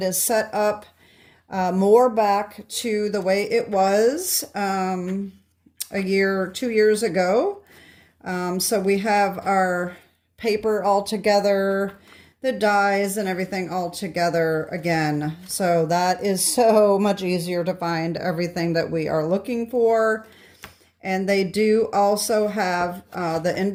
is set up more back to the way it was a year, 2 years ago. So we have our paper all together, the dies and everything all together again. So that is so much easier to find everything that we are looking for. And they do also have the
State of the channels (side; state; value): both; identical; correlation 1.00